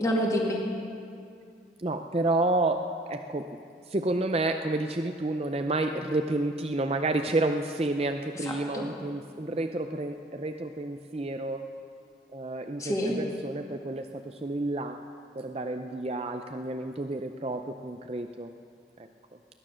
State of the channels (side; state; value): both; normal; correlation 0.54